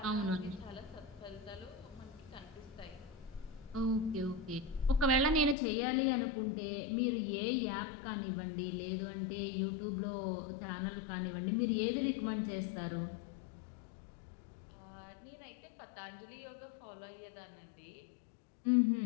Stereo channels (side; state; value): right; drops out; at 5.6 s